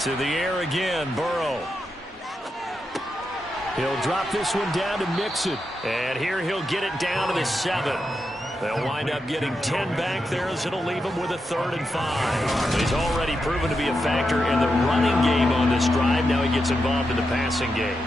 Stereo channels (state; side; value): normal; both; correlation 0.86